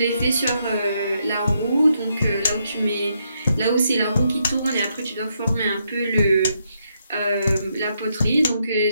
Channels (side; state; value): both; inverted; correlation -0.78